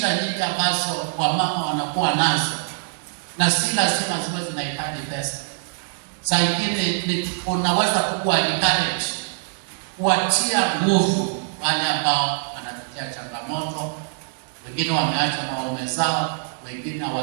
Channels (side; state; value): left; silent; digital silence